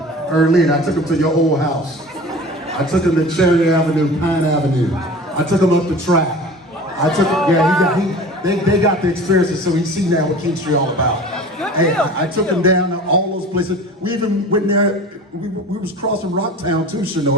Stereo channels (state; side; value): normal; both; correlation 0.39